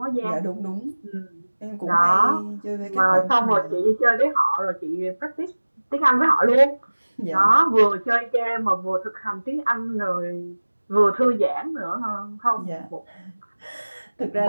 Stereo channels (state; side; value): inverted; both; correlation -1.00